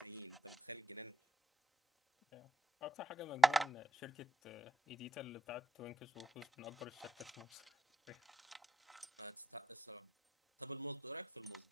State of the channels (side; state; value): both; normal; correlation 0.83